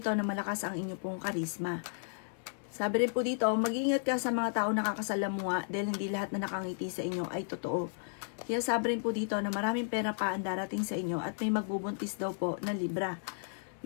na malakas ang inyo pong karisma. Sabi rin po dito, mag-iingat ka sa mga tao nakakasalamuha dahil hindi lahat na nakangiti sa inyo ay totoo. Sabi rin po dito na maraming pera pa ang darating sa inyo at may magbubuntis daw po na Libra.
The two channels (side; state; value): right; silent; 55 dB below the other